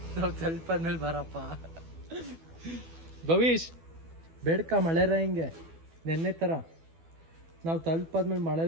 ನಾವು ತಲುಪಾದ್ಮೇಲೆ ಬರಪ್ಪ ಭವಿಷ್, ಬೇಡ್ಕ ಮಳೆರ ಹಿಂಗೆ ನೆನ್ನೆ ತರ. ನಾವು ತಲುಪಾದ್ಮೇಲೆ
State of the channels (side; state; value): left; late; 12 ms